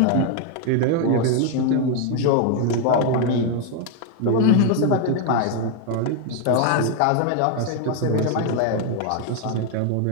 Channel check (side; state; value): both; different; correlation 0.00